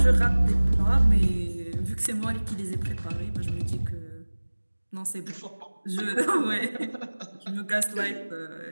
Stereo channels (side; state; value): both; inverted; correlation -1.00